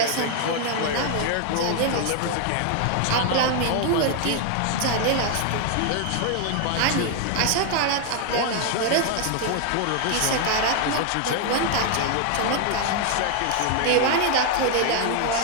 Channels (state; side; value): different; both; correlation 0.00